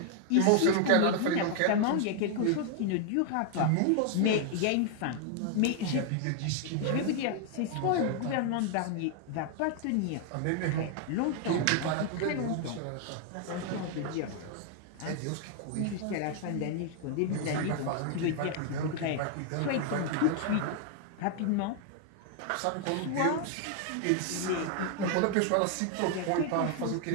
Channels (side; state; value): both; different; correlation 0.00